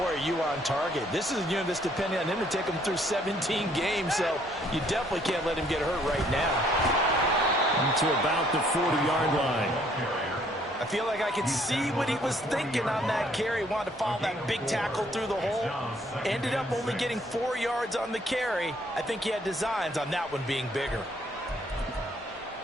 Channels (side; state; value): both; normal; correlation 0.64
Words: are you on target. This is a unit that's depending on him to take him through 17 games, so you definitely can't let him get hurt right now. To about the 40-yard line. I feel like I could see what he was thinking on that carry. Wanted to follow that big tackle through the hole. Ended up only getting 4 yards on the carry. I think he had designs on that one being bigger.